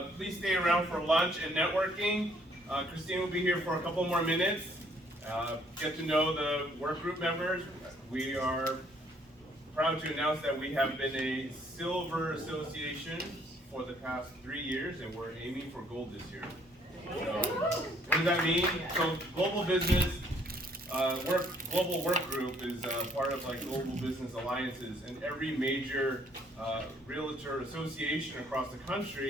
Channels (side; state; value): both; normal; correlation 0.64